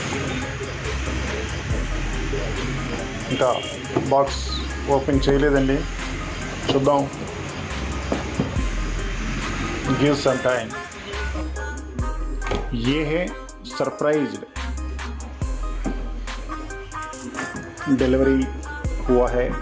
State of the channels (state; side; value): identical; both; correlation 1.00